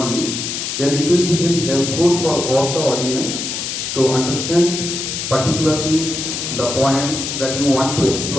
then it will be very helpful for all the audience to understand particularly the points that you want to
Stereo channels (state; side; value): noise; left; hiss, 4 dB below the sound